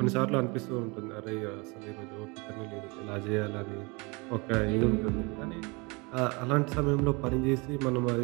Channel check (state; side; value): quieter; left; 28.0 dB